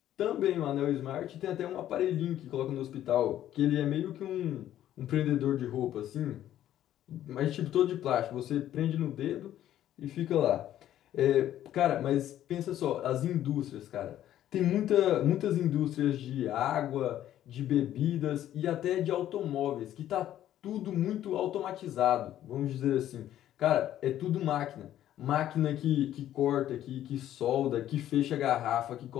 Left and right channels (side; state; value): right; quieter; 12.1 dB